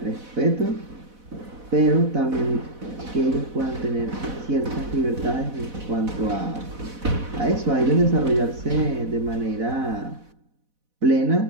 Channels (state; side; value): late; left; 4.1 ms